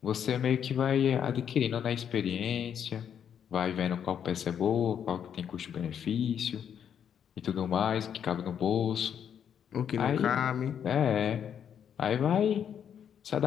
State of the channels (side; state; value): right; quieter; 8.5 dB